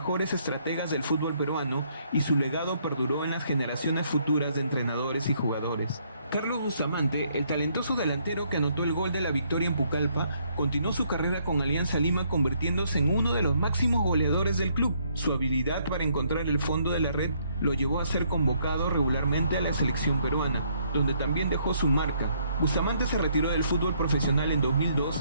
estrategas del fútbol peruano y su legado perduró en las generaciones futuras de entrenadores y jugadores. Carlos Bustamante, el talentoso delantero que anotó el gol de la victoria en Pucallpa, continuó su carrera con Alianza Lima convirtiéndose en uno de los máximos goleadores del club. Su habilidad para encontrar el fondo de la red lo llevó a ser convocado regularmente a la selección peruana, donde también dejó su marca. Bustamante se retiró del fútbol profesional en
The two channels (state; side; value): inverted; both; correlation -0.69